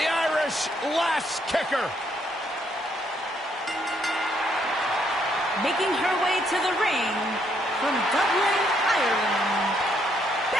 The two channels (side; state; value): both; normal; correlation 0.72